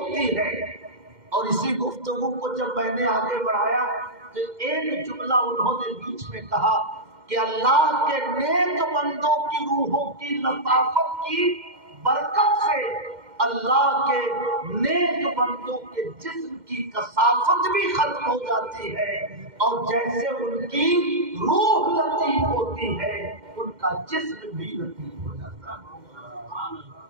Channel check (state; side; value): late; left; 2.1 ms